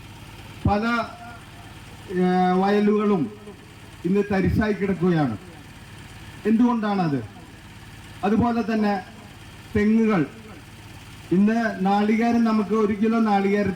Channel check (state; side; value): identical; both; correlation 1.00